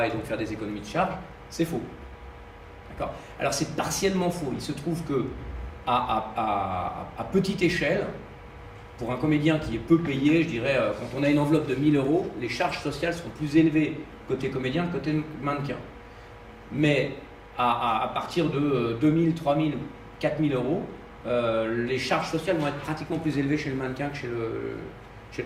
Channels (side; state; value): both; identical; correlation 1.00